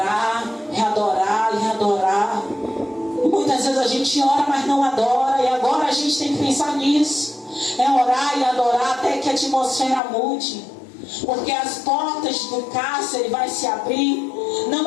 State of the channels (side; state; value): right; drops out; at 10.0 s